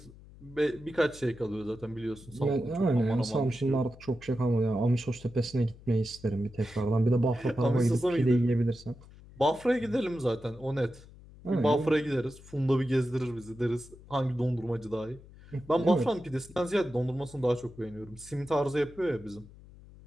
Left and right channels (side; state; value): left; noise; hum, 21 dB below the sound